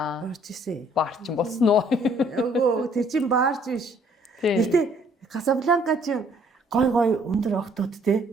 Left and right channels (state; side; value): normal; both; correlation 0.62